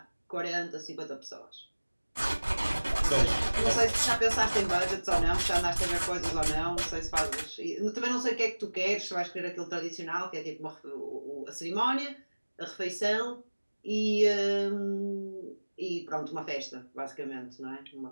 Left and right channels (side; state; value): both; inverted; correlation -1.00